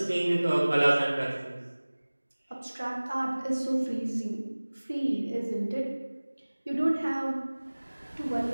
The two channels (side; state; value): both; inverted; correlation -1.00